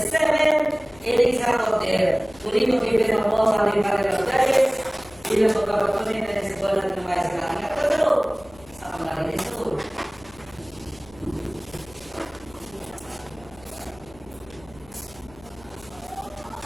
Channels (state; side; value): noise; left; hum, 23 dB below the sound